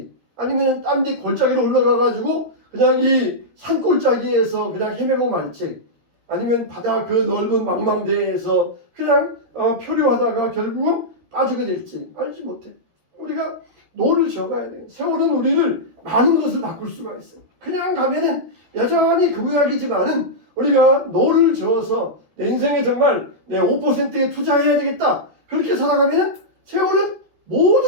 아니면 딴 데 골짜기로 올라가 가지고 그냥 이 산골짜기에서 그냥 헤매고 말지 아니면 바다 그 넓은 망망대해에서 그냥 표류하다가 결국은 빠지게 될지 알지 못해. 우리가 노를 저어가야 돼요. 세월은 우리를 많은 것을 바꿀 수가 있어요. 그냥 가면은 여전히 그 모양이지만은 우리가 노를 저어서 내 인생에 정말 내 5%에 투자해야 되겠다. 그렇게 살아가면은 세월은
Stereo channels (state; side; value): late; left; 13 ms